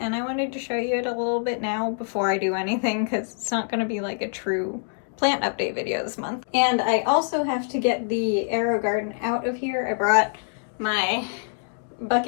I wanted to show you it a little bit now before I do anything, because it's not going to be like a true plant update video this month. And I also have to get the aero garden out of here. I brought my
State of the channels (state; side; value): silent; right; 62 dB below the other